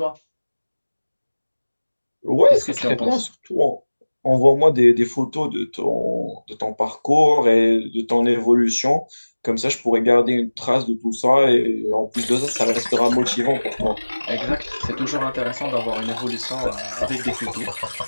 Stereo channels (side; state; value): both; inverted; correlation -1.00